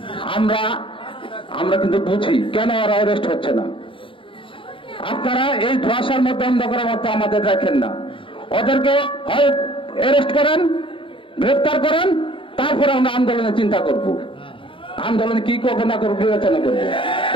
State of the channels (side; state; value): right; late; 0.25 ms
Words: আমরা কিন্তু বুঝি কেন ওরা অ্যারেস্ট হচ্ছে না। আপনারা এই ধোঁয়াশার মধ্যে অন্ধকারের মতো আমাদের রাখেন না। ওদেরকে হয় অ্যারেস্ট করেন, গ্রেফতার করেন, তারপরে আমরা আন্দোলনের চিন্তা করব। আন্দোলন কি করবো না করবো বিবেচনা করবো।